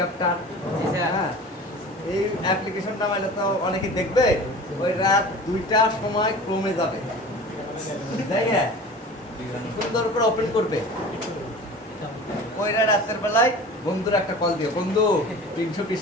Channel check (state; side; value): normal; both; correlation 0.38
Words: হ্যাঁ এই অ্যাপ্লিকেশন নামাইলে তো অনেকে দেখবে ওই রাত 2টার সময় ক্রমে যাবে তাই হ্যাঁ সুন্দর করে ওপেন করবে ওই রাতের বেলায় বন্ধুর একটা কল দিও বন্ধু